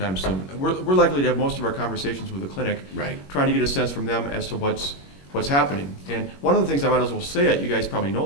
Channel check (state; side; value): late; right; 21 ms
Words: soon. We're likely to have most of our conversations with the clinic, Right. trying to get a sense from them as to what's happening. And one of the things I might as well say it, you guys probably know